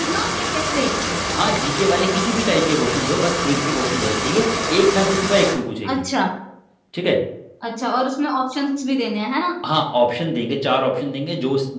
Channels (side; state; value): both; identical; correlation 1.00